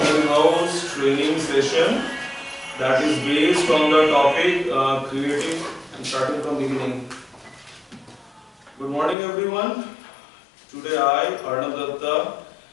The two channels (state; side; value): drops out; right; at 9.2 s